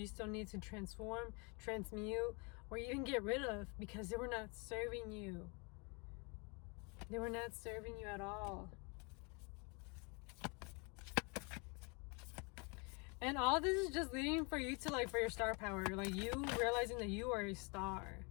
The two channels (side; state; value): right; quieter; 32.0 dB